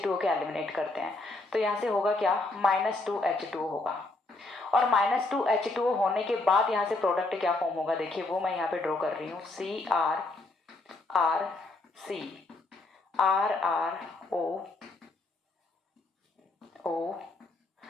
के एलिमिनेट करते हैं, तो यहाँ से होगा क्या, -2H2O होगा। और -2H2O होने के बाद यहाँ से प्रोडक्ट क्या फॉर्म होगा, देखिए वो मैं यहाँ पे ड्रॉ कर रही हूँ, CrRC RrO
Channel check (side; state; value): right; quieter; 3.1 dB